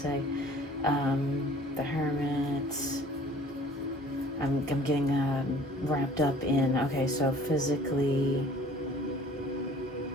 The Hermit. I'm getting wrapped up in, okay, so physically,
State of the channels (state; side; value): normal; both; correlation 0.51